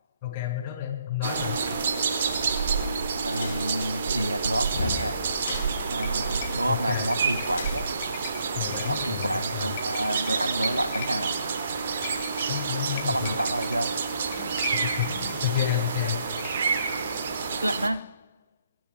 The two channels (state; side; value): inverted; both; correlation -0.71